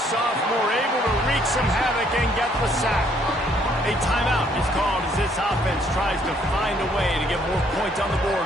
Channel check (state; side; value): normal; both; correlation 0.66